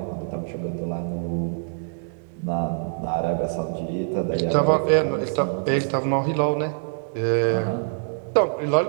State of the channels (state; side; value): silent; left; digital silence